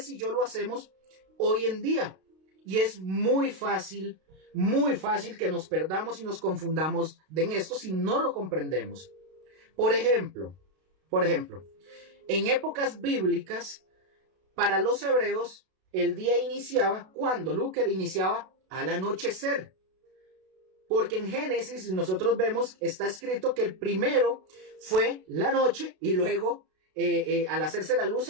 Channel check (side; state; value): left; late; 32 ms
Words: y yo lo hacemos hoy en día. Y es muy fácil que nos perdamos y nos confundamos en esto si no lo comprendemos. Por ejemplo, Por ejemplo, en épocas bíblicas, para los hebreos, el día iniciaba cuando Luker iniciaba al anochecer. Porque en Génesis nosotros vemos, está escrito que el primero fue la noche y luego al hacerse la luz